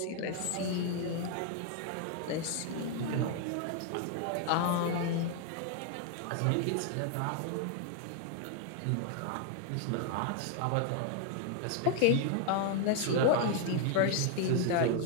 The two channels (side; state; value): both; different; correlation 0.00